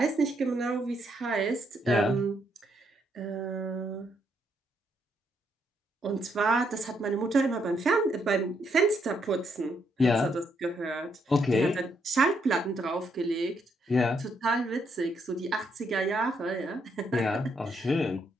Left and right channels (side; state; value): both; normal; correlation 0.75